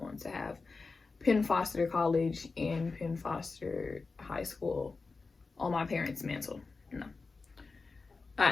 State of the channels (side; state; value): right; quieter; 4.1 dB